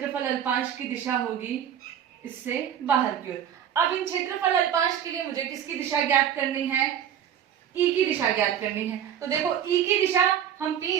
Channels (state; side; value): quieter; left; 9.6 dB